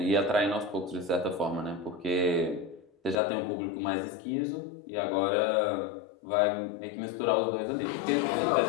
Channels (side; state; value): right; drops out; at 3.2 s